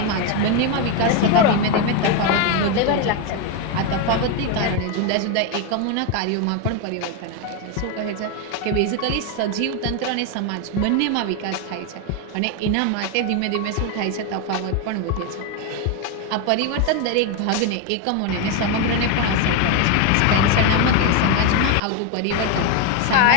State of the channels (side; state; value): both; different; correlation 0.02